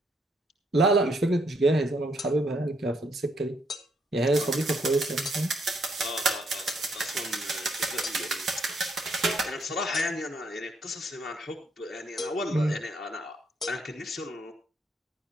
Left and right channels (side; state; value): both; normal; correlation 0.72